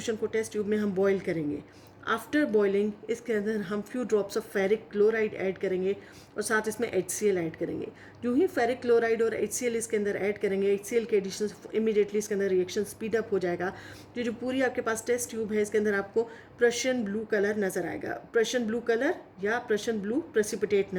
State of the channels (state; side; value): identical; both; correlation 1.00